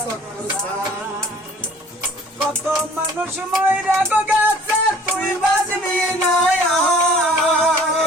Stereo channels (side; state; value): both; normal; correlation 0.52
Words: চক্কর ছাড়। কত মানুষ মইরা গেছে তুই বাজবি না